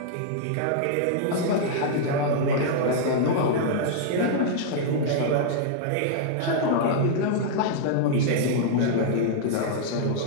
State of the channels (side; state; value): both; different; correlation -0.01